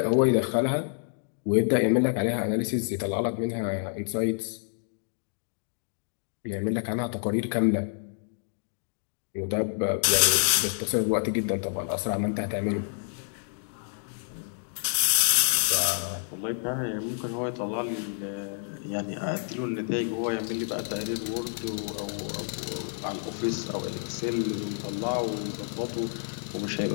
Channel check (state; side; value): silent; right; digital silence